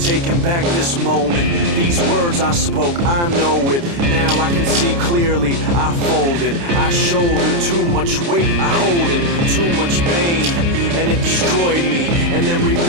back this moment. These words I spoke, I know it. Now I can see clearly. I folded, I shouldered too much weight. I hold in too much pain, and it destroyed me, and then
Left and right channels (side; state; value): left; late; 29 ms